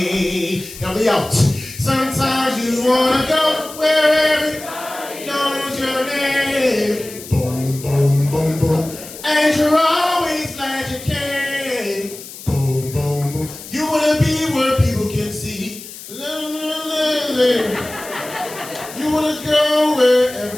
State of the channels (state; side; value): noise; left; hiss, 14 dB below the sound